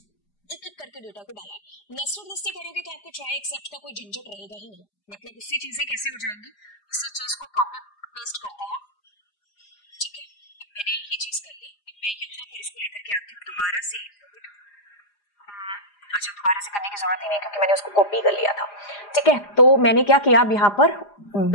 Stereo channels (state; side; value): late; right; 4.9 ms